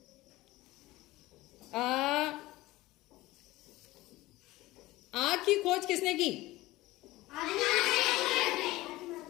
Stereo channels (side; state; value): right; quieter; 18.5 dB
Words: आग की खोज किसने की?